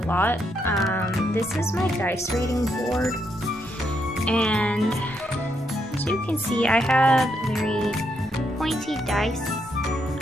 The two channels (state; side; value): normal; both; correlation 0.78